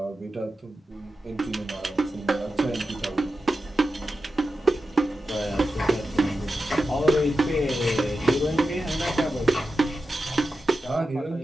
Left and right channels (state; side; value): normal; both; correlation 0.91